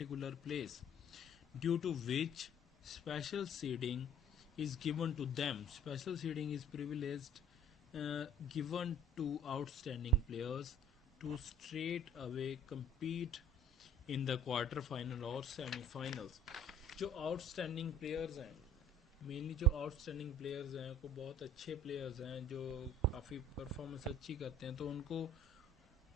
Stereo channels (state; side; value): normal; both; correlation 0.52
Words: place due to which special seeding is given to them. Special seeding is privileged given to outstanding players to straight away compete in the quarter final or semi-finals. जो outstanding players हैं, मेनली जो outstanding players हैं, को बहुत अच्छे प्लेयर्स हैं जो काफ़ी परफॉर्मेंस अच्छी करते हैं, तो उनको